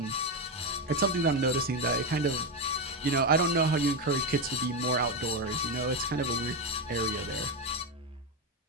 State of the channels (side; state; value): both; normal; correlation 0.10